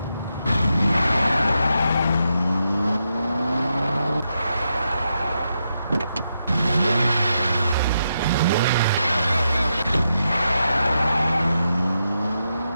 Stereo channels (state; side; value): inverted; both; correlation -0.84